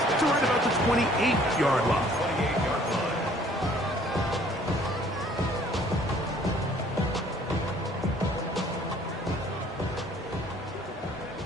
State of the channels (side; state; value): both; normal; correlation 0.57